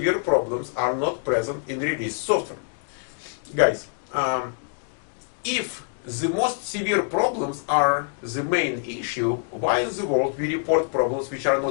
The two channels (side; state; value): right; silent; 62 dB below the other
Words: problems are not present in release software. Guys, if the most severe problems are the main issue, why in the world we report problems which are